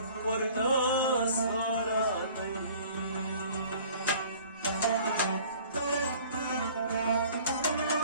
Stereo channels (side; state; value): both; inverted; correlation -0.50